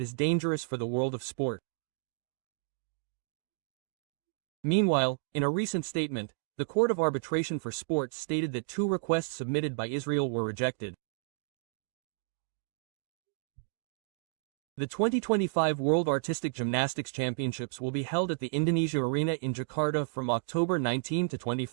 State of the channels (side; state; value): left; silent; digital silence